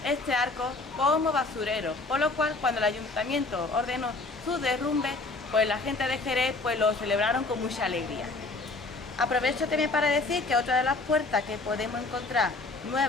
este arco como basurero, por lo cual cuando el ayuntamiento ordenó su derrumbe, pues la gente de Jerez pues lo celebraron con mucha alegría. Aprovecho también para decir que otra de las puertas que podemos encontrar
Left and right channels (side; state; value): right; quieter; 3.5 dB